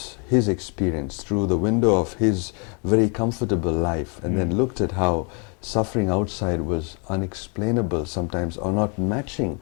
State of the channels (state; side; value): quieter; right; 36.8 dB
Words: experience through the window of his very comfortable life, and then looked at how suffering outside was unexplainable sometimes, or not matching